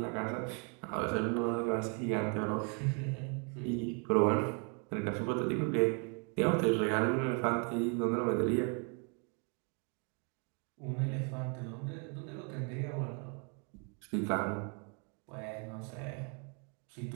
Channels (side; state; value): left; quieter; 37.3 dB